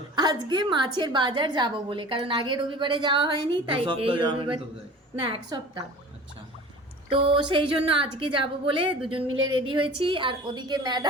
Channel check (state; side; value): normal; both; correlation 0.41